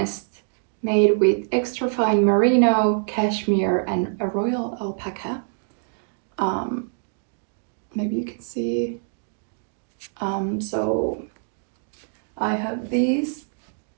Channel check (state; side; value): silent; left; digital silence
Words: made with extra fine merino, cashmere and a royal alpaca. Maybe you can see. So I have these